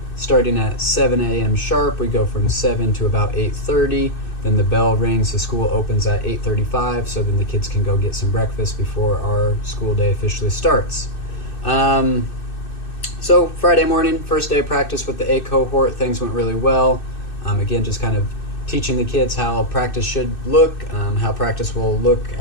starting at 7 a.m. sharp. We go from 7 to about 8:30. Then the bell rings, the school opens at 8:35, so then the kids can go get some breakfast before our school day officially starts. So Friday morning, first day of practice with the A cohort, things went really well. Again, just kind of teaching the kids how practice should look, how practice will look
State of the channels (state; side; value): late; right; 2.6 ms